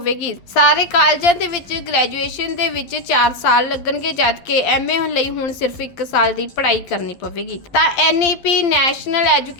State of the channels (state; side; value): late; right; 12 ms